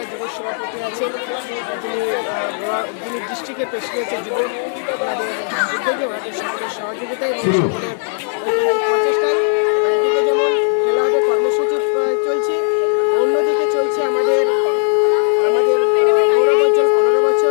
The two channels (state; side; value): silent; right; 57 dB below the other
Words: যুব সভাপতি আছেন, যিনি ডিস্ট্রিক্টের প্রেসিডেন্টের যুব, ওনাদের উদ্যোগে, ওনাদের সকলের সহযোগিতায় এবং সকলের ঐকান্তিক প্রচেষ্টায় একদিকে যেমন খেলা হবে কর্মসূচি চলছে, অন্যদিকে চলছে আমাদের গৌরবোজ্জ্বল 15